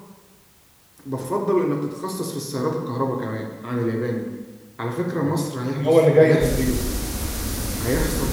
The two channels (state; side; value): identical; both; correlation 1.00